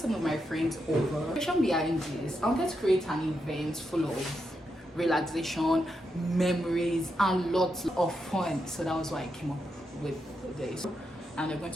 of my friends over. The reason behind this, I wanted to create an event full of relaxation, memories and lots of fun. So that was why I came up with this. And they're going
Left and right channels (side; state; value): both; normal; correlation 0.84